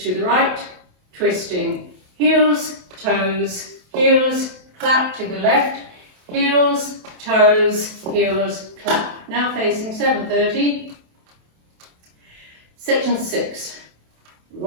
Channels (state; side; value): late; left; 27 ms